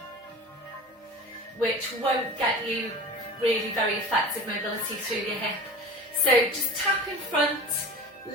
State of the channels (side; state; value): both; normal; correlation 0.36